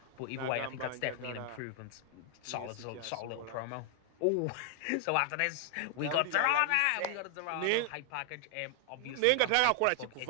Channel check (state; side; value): different; both; correlation 0.00